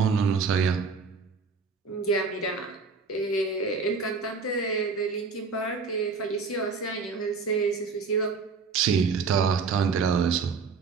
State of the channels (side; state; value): left; quieter; 5.0 dB